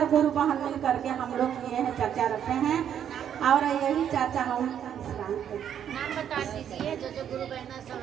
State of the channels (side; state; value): left; quieter; 9.3 dB